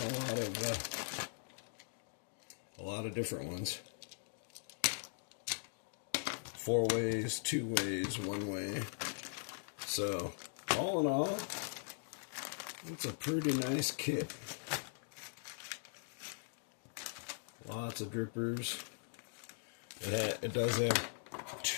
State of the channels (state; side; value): silent; right; digital silence